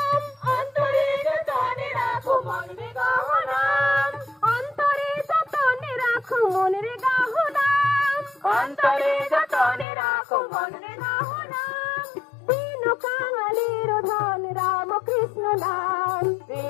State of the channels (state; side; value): drops out; right; at 9.9 s